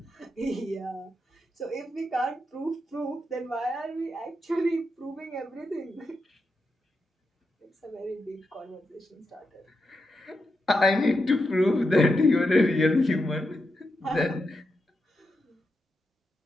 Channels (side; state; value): both; normal; correlation 0.86